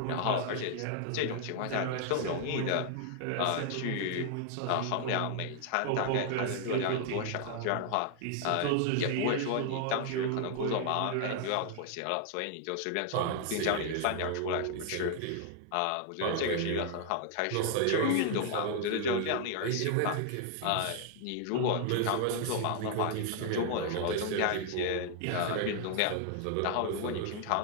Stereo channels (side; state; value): both; different; correlation 0.00